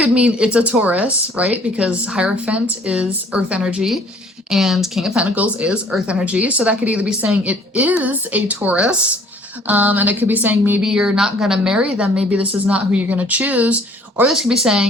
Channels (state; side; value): normal; both; correlation 0.56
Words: mean it's a Taurus, right? Because Hierophant is earth energy and King of Pentacles is earth energy. So that could either be saying it is a Taurus, and it could be saying maybe you're not going to marry them. Maybe this is not who you're going to choose. Or this could be